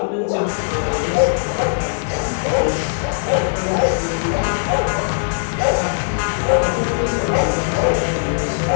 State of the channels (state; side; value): silent; right; digital silence